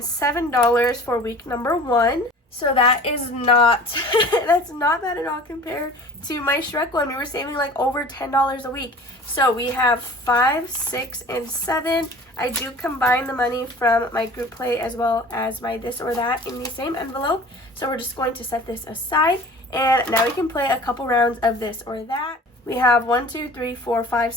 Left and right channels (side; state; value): both; normal; correlation 0.44